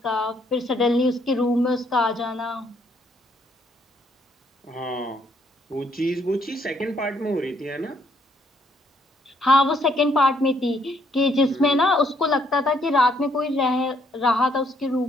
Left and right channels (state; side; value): normal; both; correlation 0.69